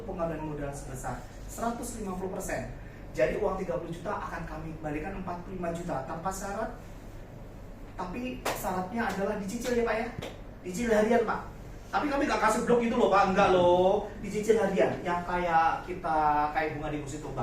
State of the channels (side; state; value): both; identical; correlation 1.00